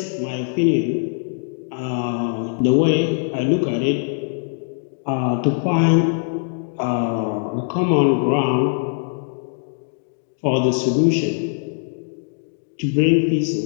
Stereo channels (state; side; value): silent; right; digital silence